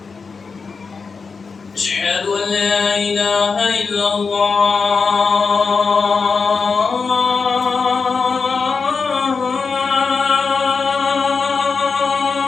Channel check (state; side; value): quieter; right; 4.9 dB